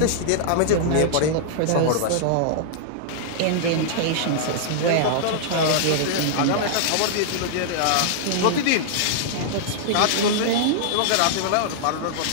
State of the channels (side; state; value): both; different; correlation -0.01